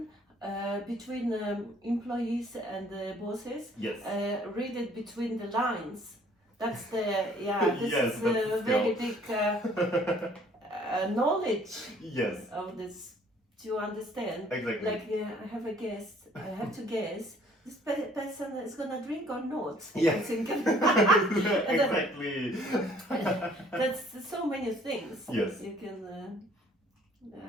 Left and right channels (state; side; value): normal; both; correlation 0.58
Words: between employees and bosses. Yes. Read it between the lines. That's the, this Yes, is that's a very big knowledge Yes. of this to understand. Exactly. Like I have a guess, I have to guess, this person is gonna drink or not. Yeah. I'm thinking. Exactly. That's so many things. Yes. You can,